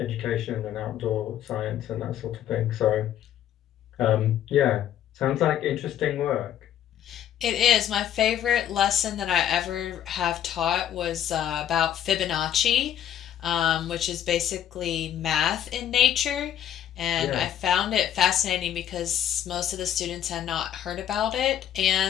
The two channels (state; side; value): quieter; right; 10.6 dB